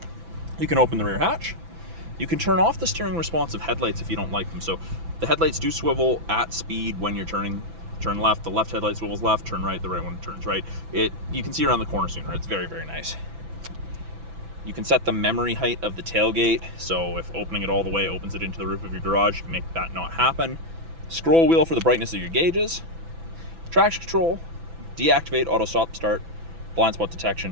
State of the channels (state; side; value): late; left; 6.0 ms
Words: You can open the rear hatch. You can turn off the steering responsive headlights if you don't like them. So the headlights do swivel at speed when you're turning. Turn left, the left headlight swivels left, turn right, the right one turns right. You can see around the corner sooner. It's very, very nice. You can set the memory height of the tailgate. So if opening it all the way opens it into the roof of your garage, you can make that not happen. Scroll wheel for the brightness of your gauges. Traction control, deactivate auto stop start, blind spot